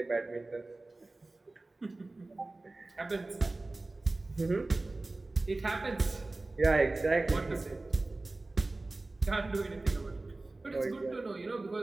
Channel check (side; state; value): left; quieter; 3.1 dB